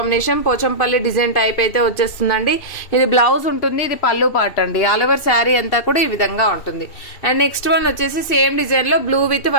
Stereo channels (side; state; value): right; late; 2.6 ms